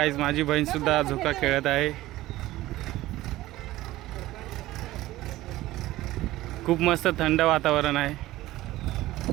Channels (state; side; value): quieter; left; 16.6 dB